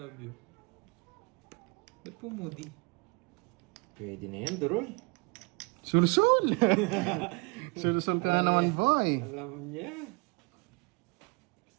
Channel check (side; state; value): left; quieter; 30.4 dB